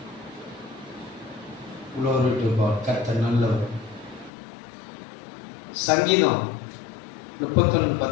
Glory to God. கர்த்தர் நல்லவர். சங்கீதம்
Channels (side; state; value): right; drops out; at 4.3 s